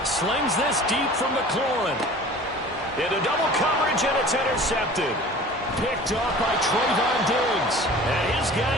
Slings this deep from McLaurin. Into double coverage, and it's intercepted. Picked off by Trayvon Diggs. And his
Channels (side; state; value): both; normal; correlation 0.43